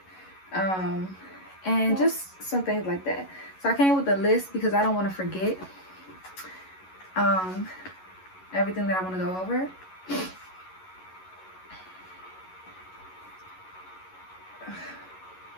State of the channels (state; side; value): late; right; 11 ms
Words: and just some things like that. So I came with a list because I don't want to forget everything that I want to go over.